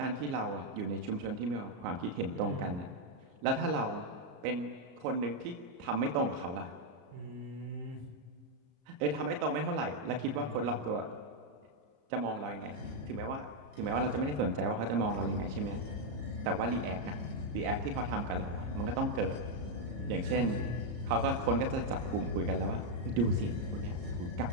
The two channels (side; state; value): left; late; 34 ms